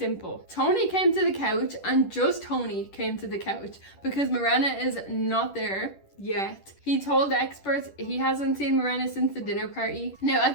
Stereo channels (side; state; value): right; late; 10 ms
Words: Tony came to the couch, and just Tony came to the couch because Mirenna is not there yet. He told the experts he hasn't seen Mirenna since the dinner party. Now at